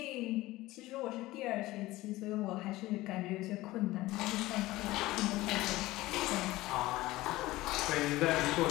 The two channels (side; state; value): right; quieter; 18.1 dB